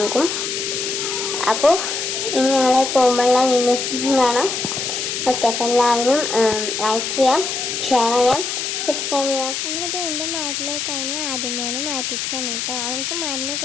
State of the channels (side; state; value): left; noise; hiss, 2 dB below the sound